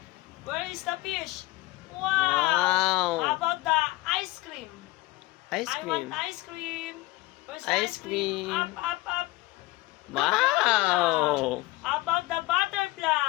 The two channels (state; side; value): quieter; right; 19.8 dB